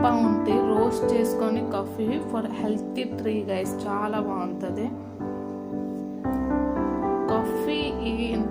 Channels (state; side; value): identical; both; correlation 1.00